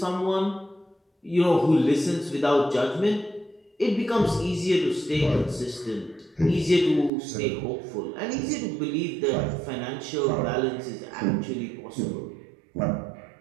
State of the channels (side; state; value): left; drops out; at 7.1 s